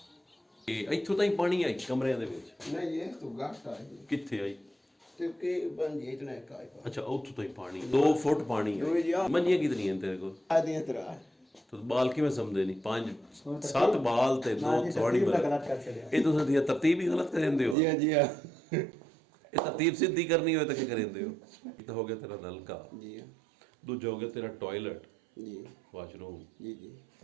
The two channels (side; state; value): left; drops out; at 17.8 s